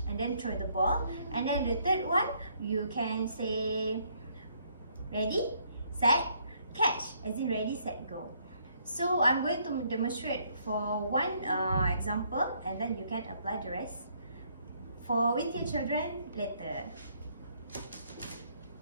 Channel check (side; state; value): both; inverted; correlation -0.68